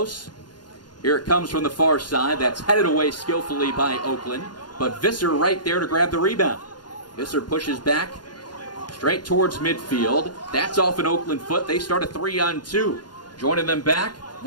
Here it comes from the far side. That's headed away skillfully by Oakland. But Visser right there to grab the rebound. Visser pushes back straight towards midfield. That's off an Oakland foot. They start a 3-on-2. Joining them back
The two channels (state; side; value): late; right; 0.71 ms